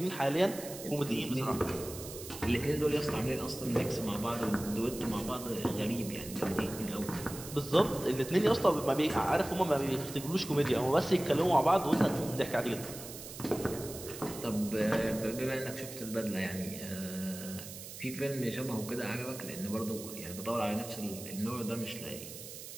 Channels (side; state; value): right; noise; hiss, 12 dB below the sound